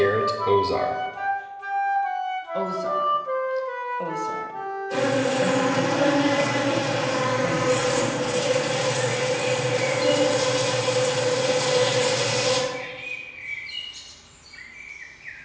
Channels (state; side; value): identical; both; correlation 1.00